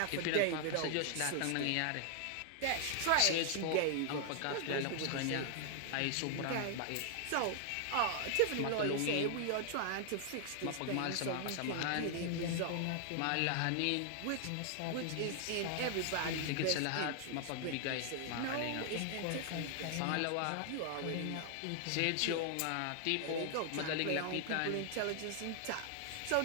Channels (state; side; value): different; both; correlation 0.00